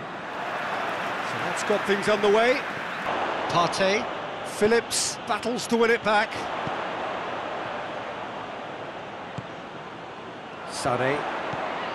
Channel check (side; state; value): both; identical; correlation 1.00